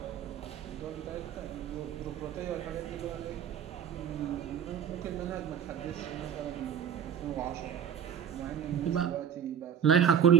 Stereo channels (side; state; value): left; quieter; 8.7 dB